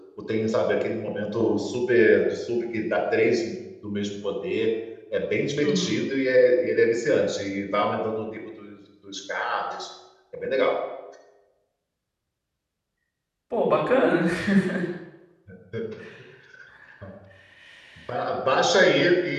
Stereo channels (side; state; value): both; identical; correlation 1.00